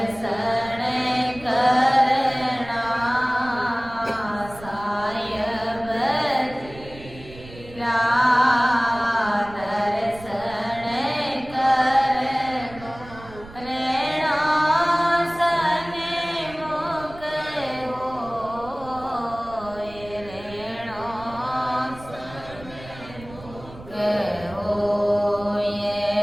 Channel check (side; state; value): right; noise; rumble, 18 dB below the sound